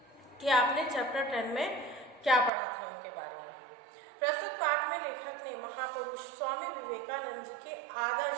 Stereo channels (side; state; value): left; drops out; at 2.5 s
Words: कि आपने चैप्टर 10 में क्या पढ़ा था उनके बारे में। प्रस्तुत पाठ में लेखक ने महापुरुष स्वामी विवेकानंद जी के